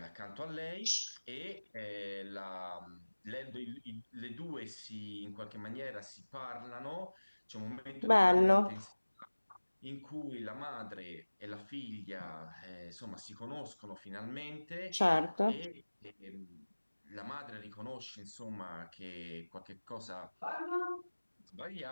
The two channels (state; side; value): inverted; both; correlation -1.00